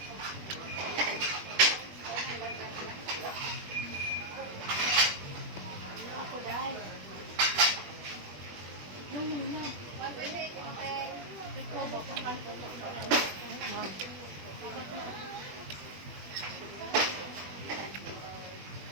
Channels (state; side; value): late; left; 21 ms